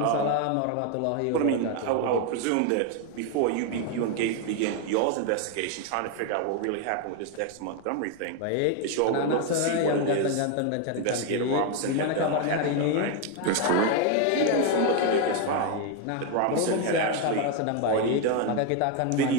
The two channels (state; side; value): different; both; correlation 0.01